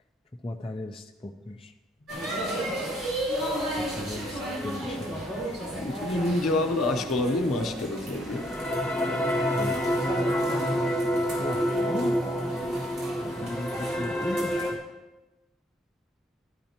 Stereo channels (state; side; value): normal; both; correlation 0.68